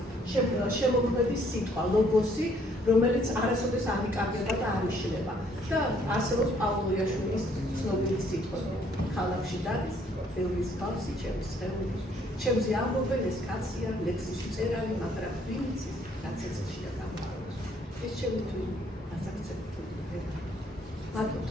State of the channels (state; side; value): normal; both; correlation 0.65